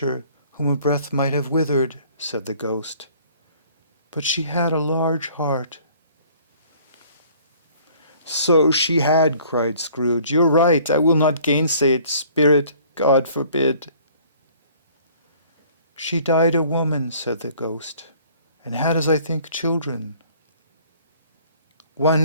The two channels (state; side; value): inverted; both; correlation -0.55